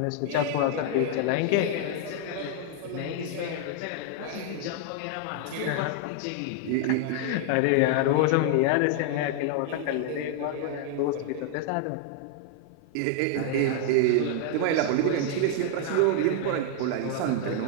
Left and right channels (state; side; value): different; both; correlation 0.00